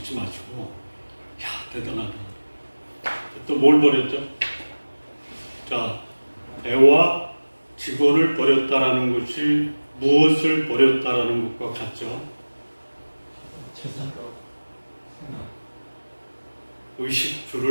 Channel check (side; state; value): both; inverted; correlation -1.00